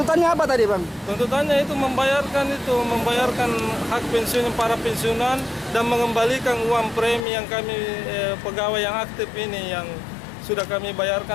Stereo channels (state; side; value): drops out; right; at 7.2 s